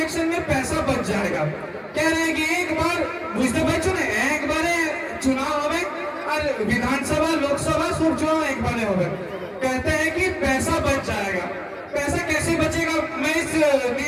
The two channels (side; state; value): both; identical; correlation 1.00